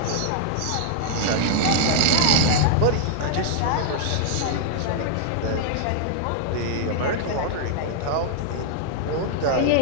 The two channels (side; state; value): both; different; correlation -0.01